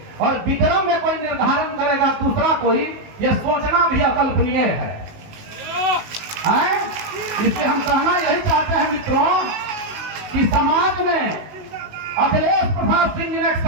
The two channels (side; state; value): left; late; 19 ms